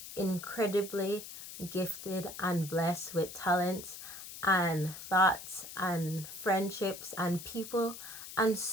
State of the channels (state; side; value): noise; left; hiss, 12 dB below the sound